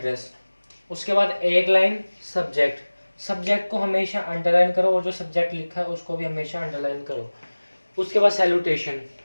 उसके बाद एक लाइन सब्जेक्ट। सब्जेक्ट को हमेशा अंडरलाइन करो और जो सब्जेक्ट लिखा है उसको भी हमेशा अंडरलाइन करो। उसके बाद सैल्यूटेशन,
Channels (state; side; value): inverted; both; correlation -1.00